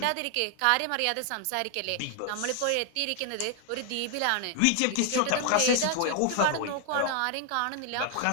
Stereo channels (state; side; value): different; both; correlation 0.00